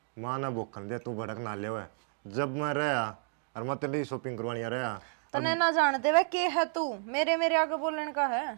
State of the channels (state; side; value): silent; left; 57 dB below the other